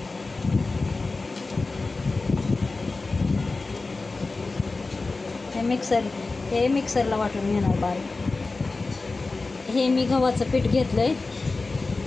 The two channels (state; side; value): quieter; right; 3.6 dB